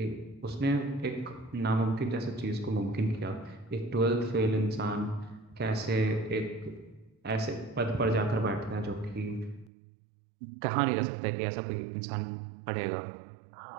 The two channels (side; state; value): left; drops out; at 9.7 s